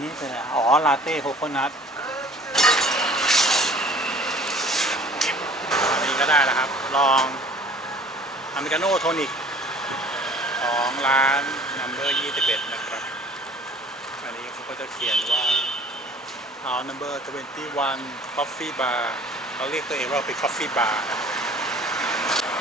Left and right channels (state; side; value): normal; both; correlation 0.50